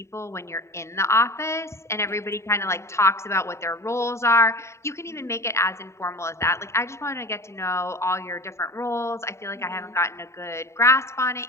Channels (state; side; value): late; right; 0.14 ms